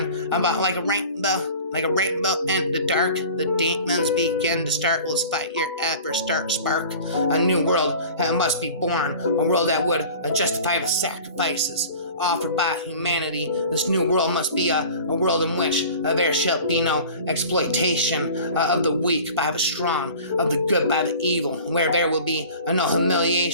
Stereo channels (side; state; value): both; inverted; correlation -0.42